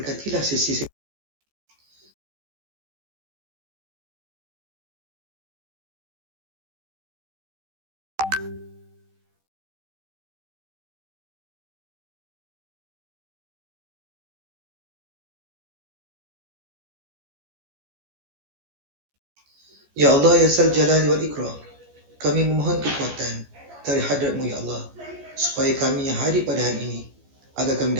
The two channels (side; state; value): left; late; 14 ms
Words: sesi. Ya Allah, Ya Zal Jalali wal Ikram, kami memohon kekuatan dari hadratmu Ya Allah, supaya kami yang hadir pada hari ini agar kami